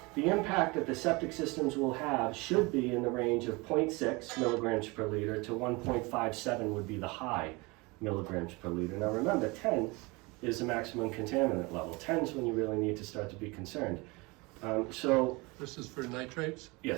the impact that the septic systems will have should be in the range of 0.6 milligrams per liter to 1.57 would be the high milligrams per liter. Now remember, 10 is the maximum contaminant level. 10 is when you really need to start to be concerned. So, This is for nitrates?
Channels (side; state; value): left; quieter; 25.6 dB